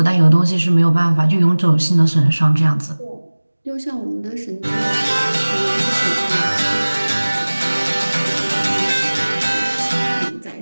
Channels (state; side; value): inverted; both; correlation -1.00